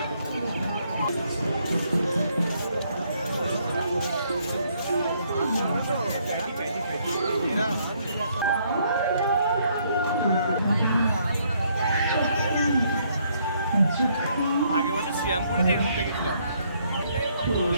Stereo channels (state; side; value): inverted; both; correlation -0.69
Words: আগে বছর শ্রীরামপুরেতে এরকম দেখেছিলাম।